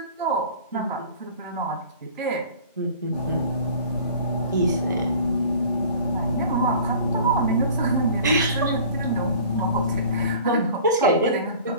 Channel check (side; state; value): both; inverted; correlation -0.45